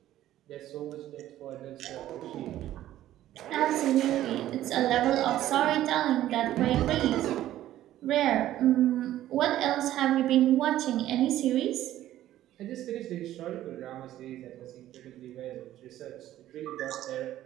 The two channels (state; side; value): quieter; left; 13.4 dB